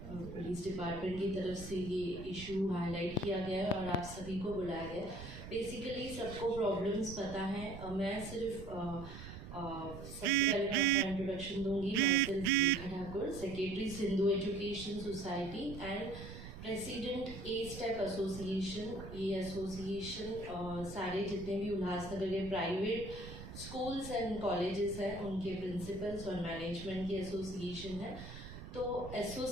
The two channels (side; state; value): right; noise; rumble, 11 dB below the sound